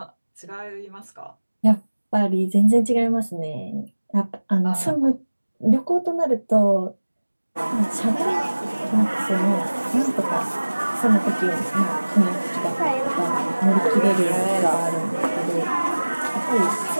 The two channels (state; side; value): inverted; both; correlation -1.00